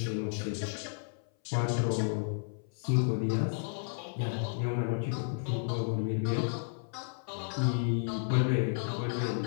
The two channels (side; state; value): right; silent; 56 dB below the other